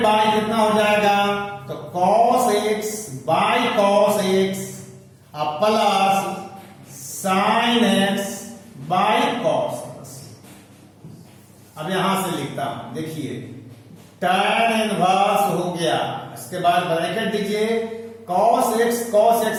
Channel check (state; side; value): identical; both; correlation 1.00